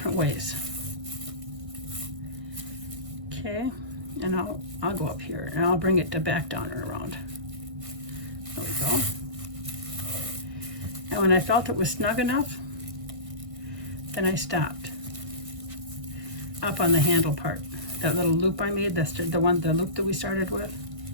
ways. Okay, and I'll go up here and I'll bring it to back down and around. There we go. And when I felt it was snug enough, then I stopped up on the handle part. That little loop I made, that's the loop that we started with.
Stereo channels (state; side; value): late; left; 1.6 ms